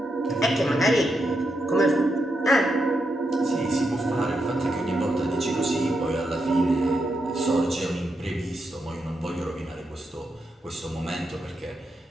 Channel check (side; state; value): both; normal; correlation 0.84